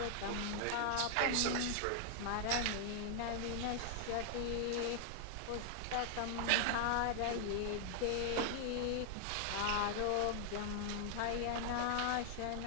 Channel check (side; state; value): both; different; correlation 0.00